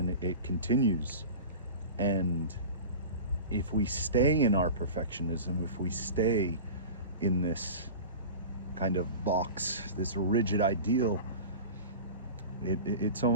it continues. And if we stay in our perfectionism, if we stay in this kind of box, this rigid ideal, it's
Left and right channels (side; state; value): both; inverted; correlation -0.33